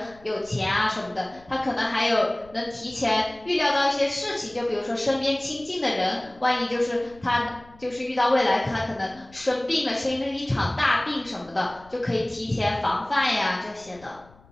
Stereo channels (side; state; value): left; noise; rumble, 25 dB below the sound